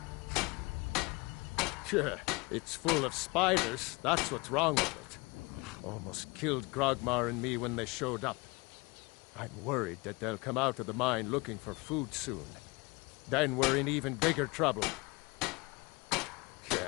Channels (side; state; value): right; quieter; 26.2 dB